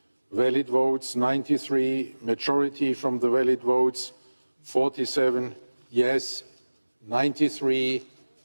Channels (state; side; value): inverted; both; correlation -1.00